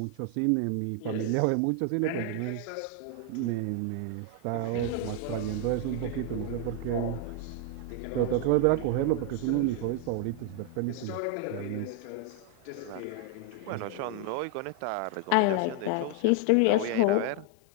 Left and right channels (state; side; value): different; both; correlation 0.00